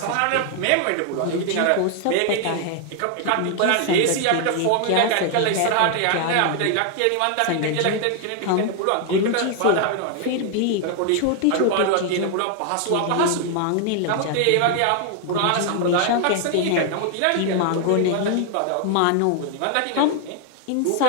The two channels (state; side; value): different; both; correlation 0.00